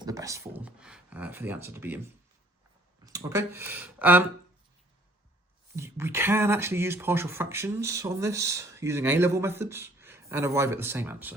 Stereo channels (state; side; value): normal; both; correlation 0.58